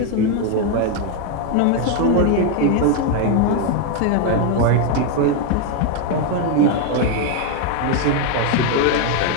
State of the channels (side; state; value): both; different; correlation 0.01